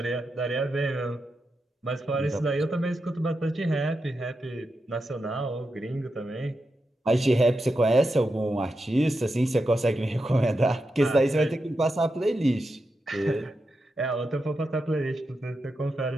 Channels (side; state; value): both; normal; correlation 0.88